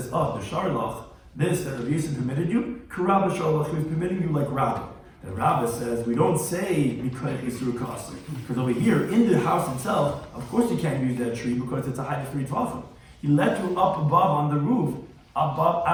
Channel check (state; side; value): identical; both; correlation 1.00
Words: the Sharlach, this that Rabbi Yisrael permitted you, Karabba Sharlach, he was permitting you like Rabbi. The Rabbi says, we don't say Mikayach Yisur Kasi. Because over here, in the house itself, of course you can't use that tree because it's a height of 3 tfachim. He let you up above on the roof, above